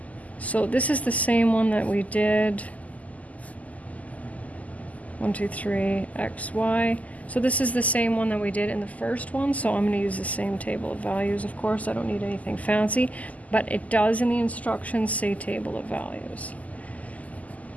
So this is the same one that we did. 1, 2, 3, x, y. So this is the same one that we did in the first one, so I'm going to use the same table of values, of course. I don't need anything fancy, but it does in the instructions say table of values.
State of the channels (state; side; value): late; right; 0.074 ms